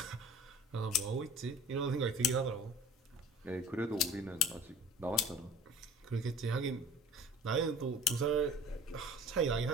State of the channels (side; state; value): both; normal; correlation 0.43